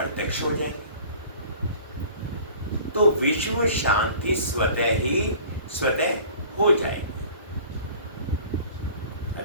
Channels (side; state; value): both; inverted; correlation -0.46